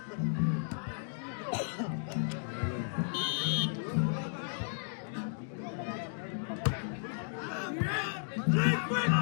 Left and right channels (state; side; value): silent; right; digital silence